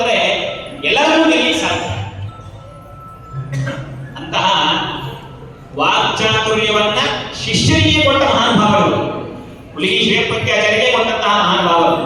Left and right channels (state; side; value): identical; both; correlation 1.00